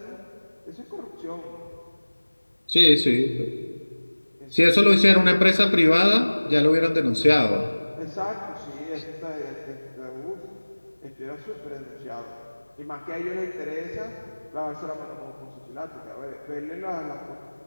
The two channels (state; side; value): inverted; both; correlation -1.00